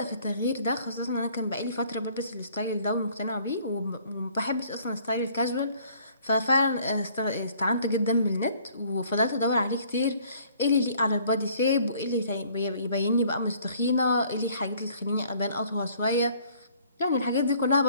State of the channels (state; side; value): inverted; both; correlation -0.58